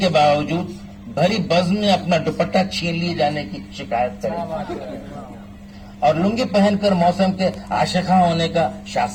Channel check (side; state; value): both; identical; correlation 1.00